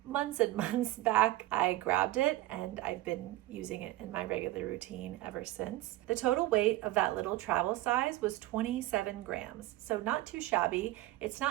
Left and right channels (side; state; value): left; quieter; 17.1 dB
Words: months and months back, I grabbed it, and I've been using it in my regular routine ever since. The total weight of that little travel size was 27 grams, so not too shabby. It's